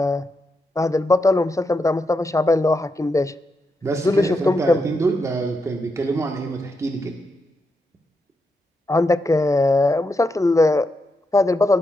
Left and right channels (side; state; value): both; normal; correlation 0.84